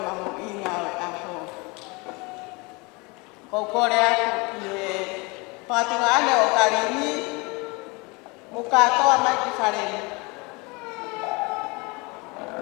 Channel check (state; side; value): quieter; right; 27.3 dB